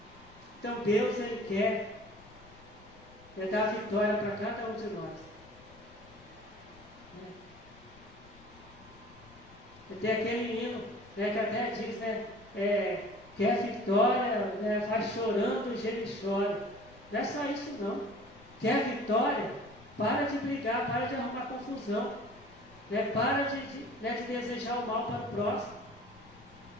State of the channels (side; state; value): left; noise; rumble, 23 dB below the sound